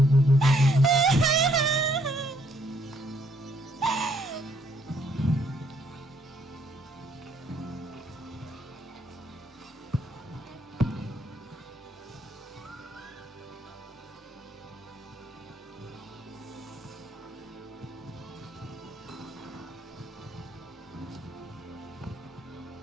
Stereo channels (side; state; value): both; normal; correlation 0.69